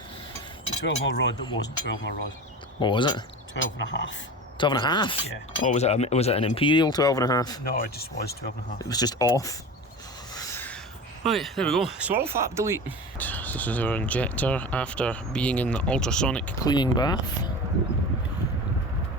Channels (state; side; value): normal; both; correlation 0.31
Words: The 12mm rod that wasn't 12mm rod. What was it? 12 and a half. 12 and a half? Yeah. Or was it an imperial 12 and a half? No, it just was 12 and a half. It was just off. Right, there we go. Swirl flap delete. This is our injector after being in the ultrasonic cleaning bath.